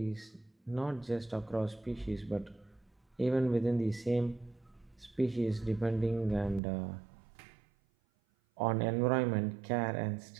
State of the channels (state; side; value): drops out; left; at 6.6 s